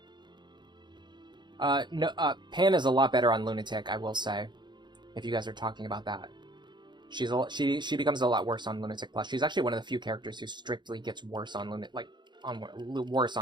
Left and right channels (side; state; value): left; late; 0.22 ms